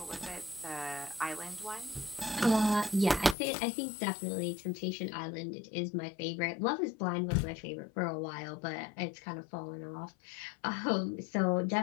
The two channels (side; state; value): right; drops out; at 3.4 s